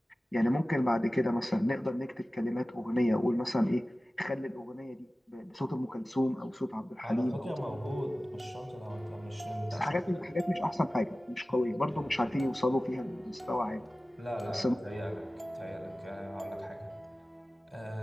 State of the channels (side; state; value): both; normal; correlation 0.97